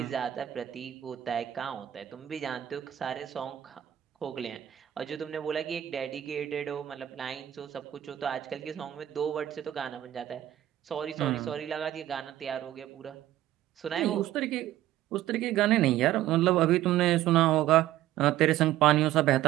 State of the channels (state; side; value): quieter; left; 13.0 dB